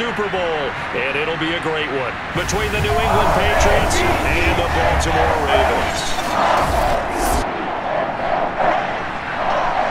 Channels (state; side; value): identical; both; correlation 1.00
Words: Bowl. And it'll be a great one between the New England Patriots and the Baltimore Ravens.